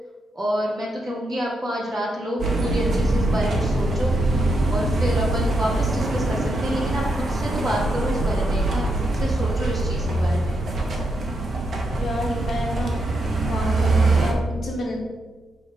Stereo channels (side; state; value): both; normal; correlation 0.81